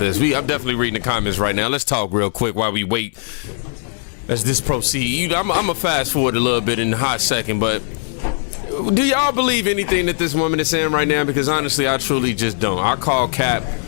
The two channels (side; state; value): right; silent; 66 dB below the other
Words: I'm definitely reading the comments right now. Let's talk real quick while we wait as this proceed. I'm going to fast forward a little bit in a hot second, but do y'all believe anything that this woman is saying right now? Because honestly, I truly just don't. I call cap